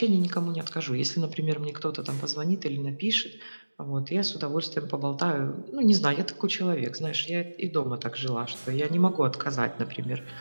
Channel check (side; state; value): both; inverted; correlation -1.00